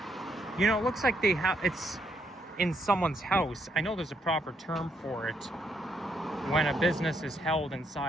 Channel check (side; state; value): both; normal; correlation 0.74